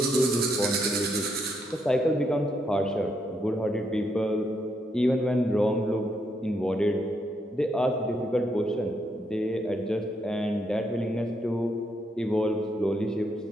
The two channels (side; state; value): both; normal; correlation 0.77